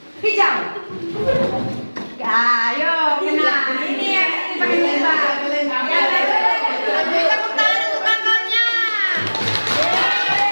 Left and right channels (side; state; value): both; inverted; correlation -1.00